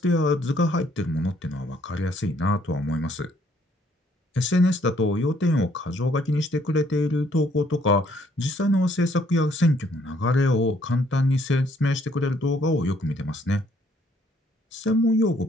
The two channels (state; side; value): normal; both; correlation 0.66